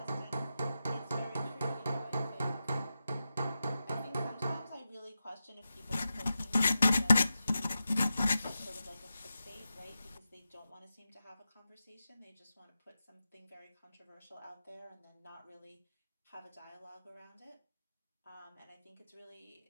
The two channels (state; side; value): inverted; both; correlation -0.91